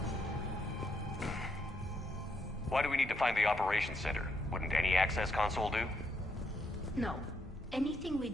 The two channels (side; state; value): both; normal; correlation 0.77